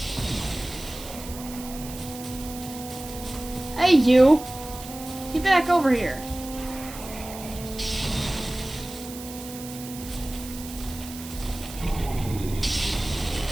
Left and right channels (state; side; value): noise; right; hiss, 13 dB below the sound